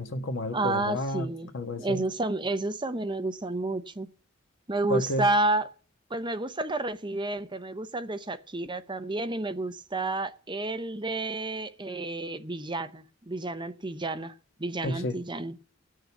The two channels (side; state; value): both; normal; correlation 0.37